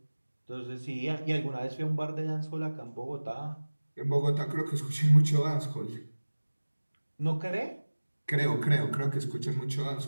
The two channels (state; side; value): inverted; both; correlation -1.00